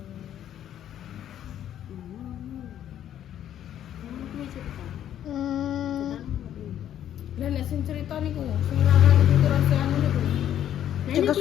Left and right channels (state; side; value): quieter; right; 10.8 dB